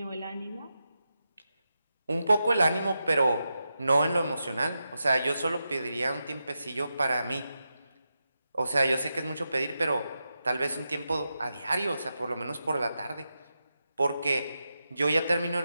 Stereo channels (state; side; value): inverted; both; correlation -0.89